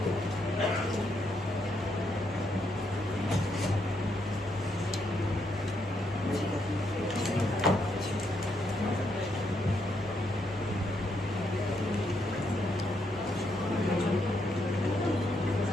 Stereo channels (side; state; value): both; normal; correlation 0.77